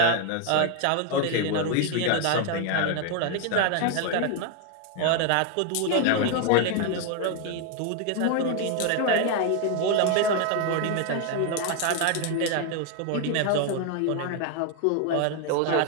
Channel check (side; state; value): both; different; correlation 0.01